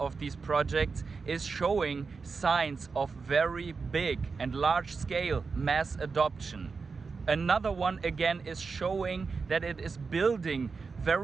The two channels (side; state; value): left; quieter; 4.8 dB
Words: these projects is showing signs of very big and large scale mass adoption. Another one again is showing that it is building